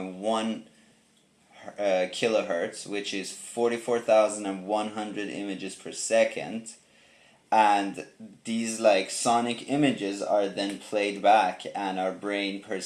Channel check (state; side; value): identical; both; correlation 1.00